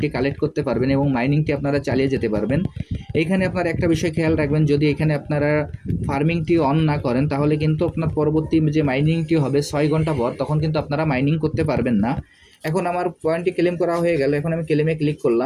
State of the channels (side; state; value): both; identical; correlation 1.00